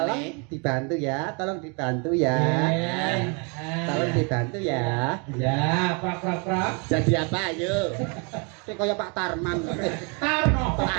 dibantu ya. Tolong dibantu ya. Tolong dibantu ya. Ya, prak. Jadi apa ayo? Kayak kaya Pak Tarman. Tarno.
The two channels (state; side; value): quieter; left; 33.8 dB